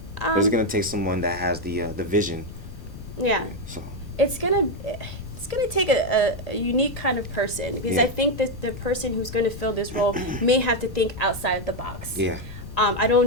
But it's going to take someone that has the vision. Yeah. So It's gonna take a unique kind of person because Yeah. I think that the person who's going to fill this role may have to think outside the box. yeah, I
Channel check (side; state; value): left; noise; rumble, 14 dB below the sound